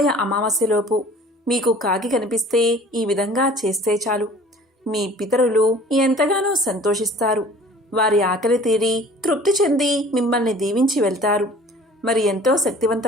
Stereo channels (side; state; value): both; normal; correlation 0.48